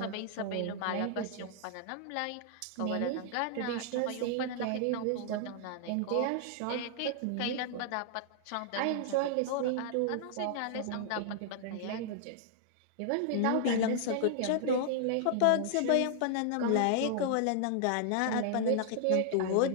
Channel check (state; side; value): different; both; correlation -0.01